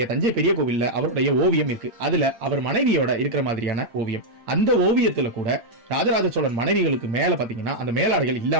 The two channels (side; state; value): left; late; 8.6 ms